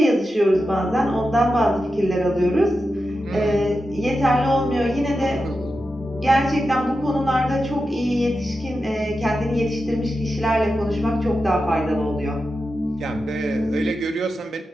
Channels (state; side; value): normal; both; correlation 0.90